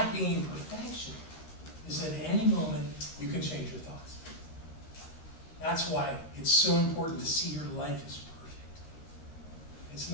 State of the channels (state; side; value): late; right; 13 ms